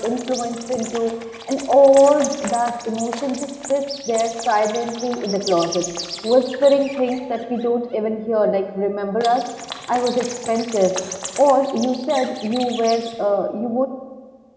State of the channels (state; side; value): identical; both; correlation 1.00